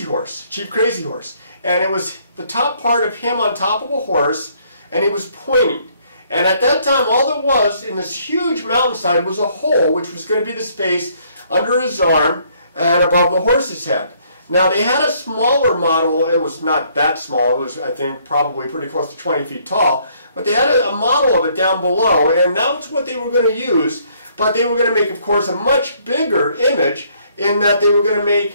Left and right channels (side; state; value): both; inverted; correlation -0.66